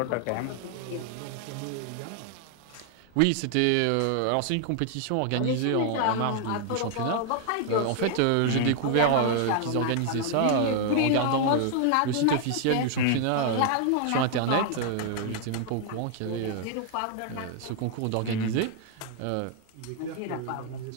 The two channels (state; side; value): different; both; correlation 0.00